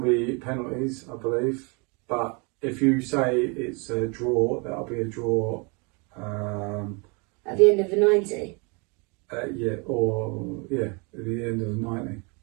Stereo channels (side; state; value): left; quieter; 31.5 dB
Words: penalties, I believe. But if you say it's a draw, that'll be a draw. At the end of the 90? At the end of the 90.